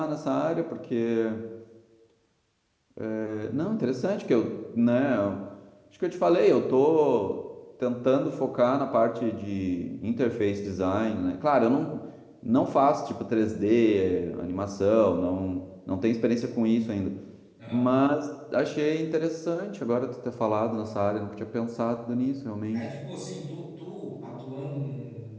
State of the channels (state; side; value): identical; both; correlation 1.00